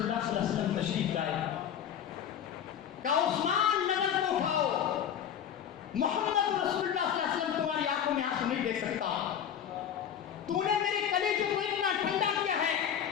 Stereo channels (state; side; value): quieter; right; 9.0 dB